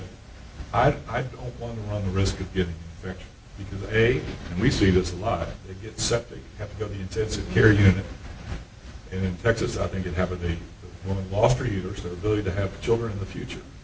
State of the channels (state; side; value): identical; both; correlation 1.00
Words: I don't want to run the risk of getting an infection. Because and we see this a lot, they get septic, have to go to the intensive care unit. And in Texas, I think it happened, the woman lost her uterus, their ability to have children in the future